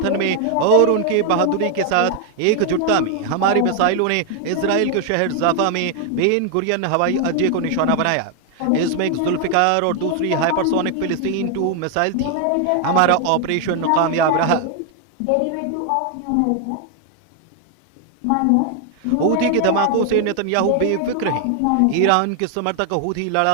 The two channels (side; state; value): both; different; correlation 0.01